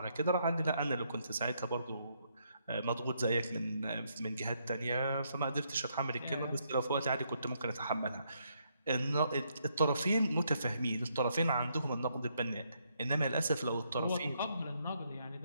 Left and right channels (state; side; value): inverted; both; correlation -0.75